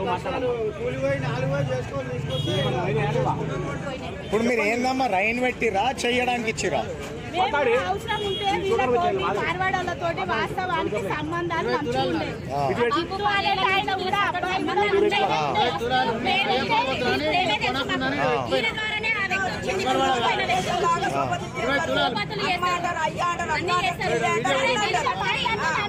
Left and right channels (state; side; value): identical; both; correlation 1.00